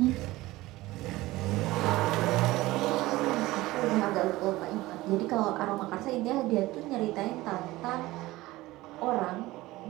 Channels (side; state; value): left; quieter; 18.5 dB